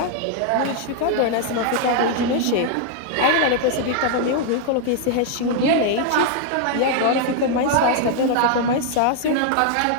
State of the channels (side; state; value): both; different; correlation 0.00